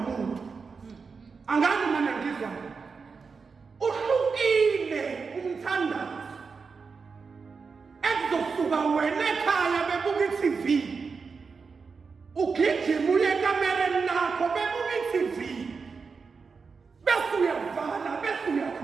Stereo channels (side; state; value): left; quieter; 5.1 dB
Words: angani mina ngizwa uhlukile umthandazo ekuzosuka wena ekhaya bebuka iTV ugijima uye ekamereni lakho bebuka iTV bese uyavala bese